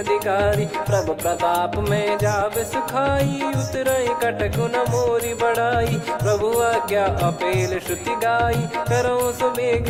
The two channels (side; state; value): both; identical; correlation 1.00